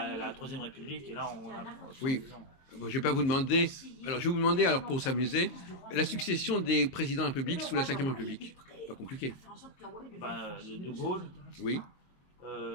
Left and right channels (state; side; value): late; right; 22 ms